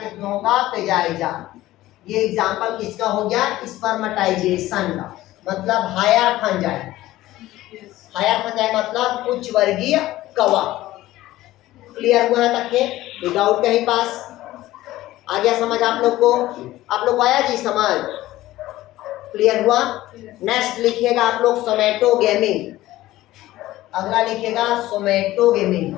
होगा? पेजाइजा। ये एग्जांपल किसका हो गया? स्पर्मेटाइजेशन का। मतलब हायर फंजाई। हायर फंजाई मतलब उच्च वर्गीय कवक। क्लियर हुआ है तक के? कोई डाउट कहीं पास? आ गया समझ आप लोग को? आप लोग को आया जी समझ? क्लियर हुआ? नेक्स्ट लिखिएगा आप लोग सोमेटोगेमी। अगला लिखिएगा सोमेटोगेमी।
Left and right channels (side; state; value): right; quieter; 16.1 dB